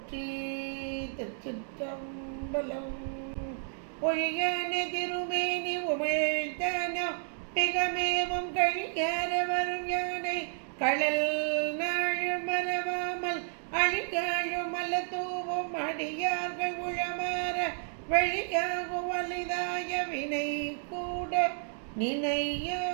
திருச்சிற்றம்பலம். ஒழியான திருமேனி உமிழ்த்தானோ மிகமேவும் கழியார வரும் யானை கடல் நாள் மறவாமல் அழிகாழும் அல்ல தூவும் அடியார்கள் உழமாற வழியாகும் வலிதாய வினை கூட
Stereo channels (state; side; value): silent; left; digital silence